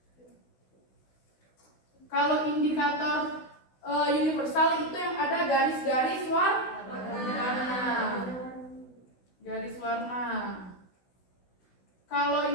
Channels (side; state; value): right; late; 16 ms